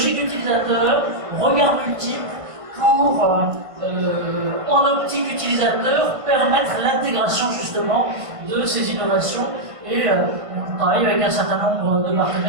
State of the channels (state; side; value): late; left; 1.5 ms